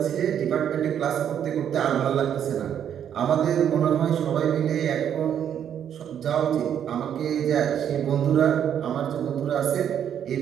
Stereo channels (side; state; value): left; quieter; 9.2 dB